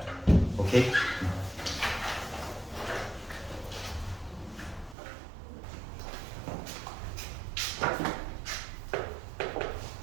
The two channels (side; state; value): left; drops out; at 5.0 s